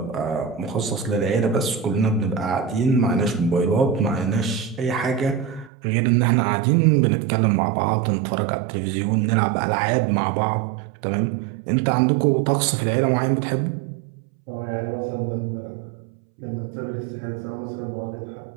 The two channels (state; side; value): drops out; left; at 5.7 s